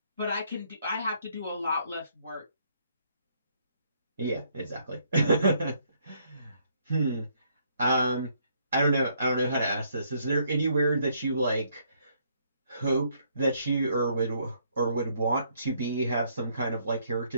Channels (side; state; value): both; inverted; correlation -0.69